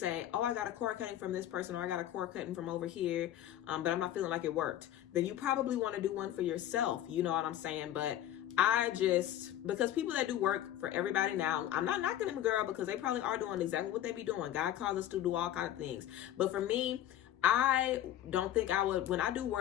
oh, I got a cord cutting from this person, or I got a cord cutting from over here, but I'm not feeling like it worked. Then you probably want to do one for yourself, you know what I'm saying? But because people that do work for everybody now, I'm not knocking them, girl, because they probably are doing exactly what they be doing. God calls us to do all kinds of things. But for me, I don't think I would, when I do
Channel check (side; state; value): right; quieter; 12.1 dB